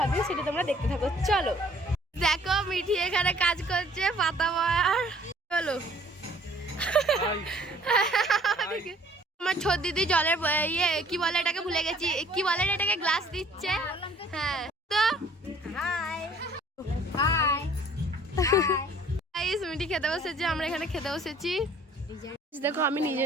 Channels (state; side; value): normal; both; correlation 0.56